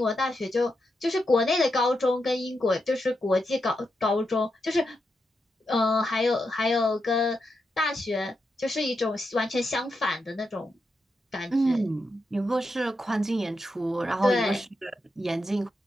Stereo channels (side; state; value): both; normal; correlation 0.85